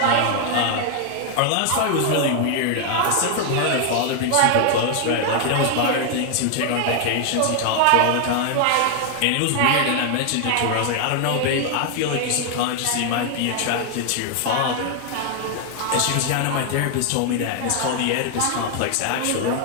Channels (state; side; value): different; both; correlation 0.00